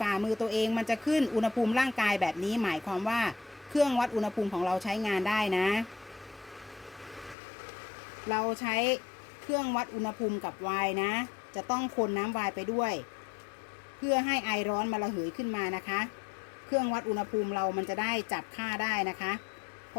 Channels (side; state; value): right; drops out; at 7.4 s